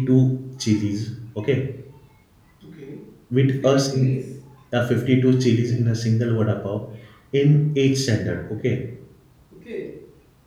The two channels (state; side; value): identical; both; correlation 1.00